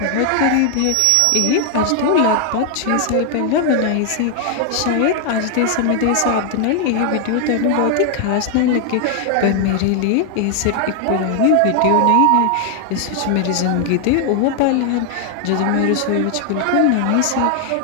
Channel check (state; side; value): different; both; correlation 0.00